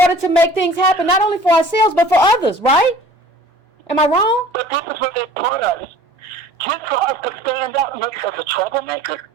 to make things happen, not only for ourselves, but for others, right? Am I wrong? But this is what they taught us. Just for us to stand up makes us a troublemaker.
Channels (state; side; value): normal; both; correlation 0.47